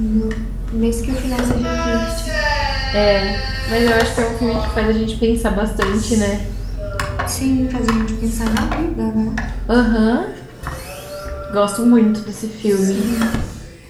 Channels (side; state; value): both; identical; correlation 1.00